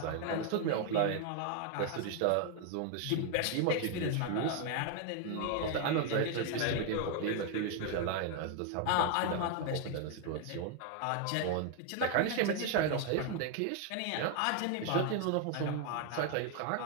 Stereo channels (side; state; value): both; different; correlation 0.00